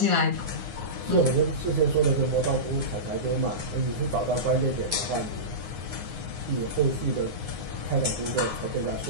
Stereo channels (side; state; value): left; late; 9.7 ms